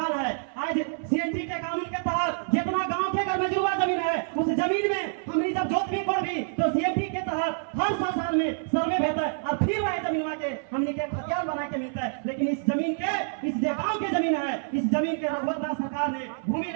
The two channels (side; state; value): left; silent; 58 dB below the other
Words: है। आज सीएनटी के कानून के तहत जितना गांव के घर में जुर्मा जमीन है, उस जमीन में हमनी जब जोत भी कोड़ भी तो सीएनटी के तहत हर 100 साल में सर्वे होता है और फिर वह जमीन के हमनी के खतियान बना के मिलता है। लेकिन इस जमीन के, इस गांव के जमीन है, इस जमीन के रघुवर दास सरकार ने भूमि